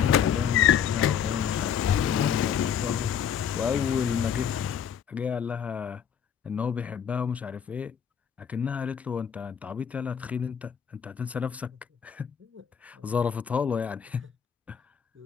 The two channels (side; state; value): right; quieter; 8.3 dB